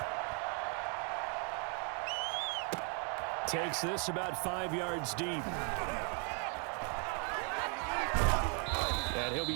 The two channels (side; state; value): left; quieter; 39.3 dB